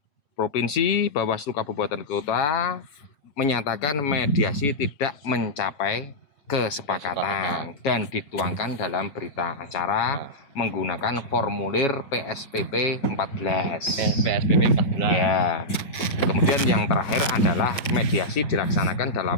Provinsi, Bawaslu Kabupaten Kota menyatakan mediasi tidak mencapai kesepakatan dan dituangkan dalam berita acara menggunakan formulir PSPP 14. PSPP 14. Ya. Kemudian yang terakhir adalah mediasi dilaksanakan dalam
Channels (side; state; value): right; late; 7.1 ms